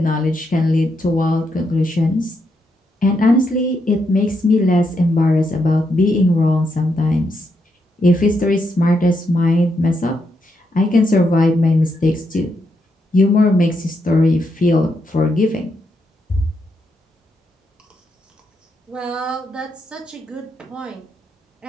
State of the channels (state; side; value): normal; both; correlation 0.80